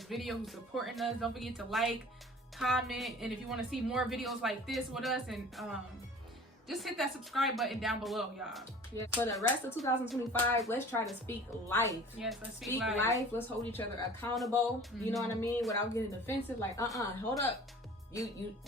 video, who's supporting us. Don't forget to like, comment, and if you want to see more videos like this with us, and just hit that subscribe button down below, y'all. Yeah. For the rest of 2025, let's try to speak life. Yes, let's Speak life. Let's hold each other accountable. You know what I mean? Without getting defensive. Like, hold up. You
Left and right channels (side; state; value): both; normal; correlation 0.44